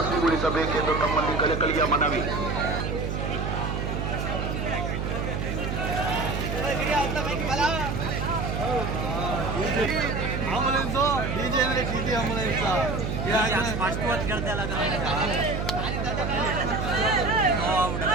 ತಮ್ಮಲ್ಲಿ ಕಳಕಳಿಯ ಮನವಿ. ಆಂಬುಲೆನ್ಸ್ ಡಿಜೆ ಅಂದ್ರೆ ಟಿಟಿ ಆಂಬುಲೆನ್ಸ್ ಸ್ಪಷ್ಟವಾಗಿ ಕೇಳ್ತಾ ಇಲ್ಲ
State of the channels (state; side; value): noise; right; hum, 2 dB below the sound